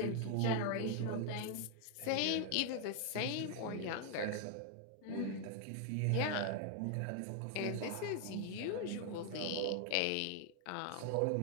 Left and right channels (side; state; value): both; different; correlation 0.00